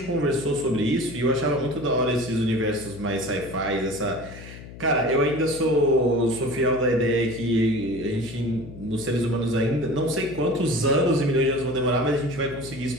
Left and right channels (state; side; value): noise; left; hum, 15 dB below the sound